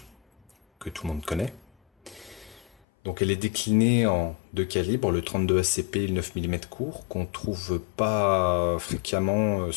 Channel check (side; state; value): right; drops out; at 2.8 s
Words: que tout le monde connaît. Donc, elle est déclinée en deux calibres, le 32 ACP et le 9 mm court, qu'on trouve pas fréquemment,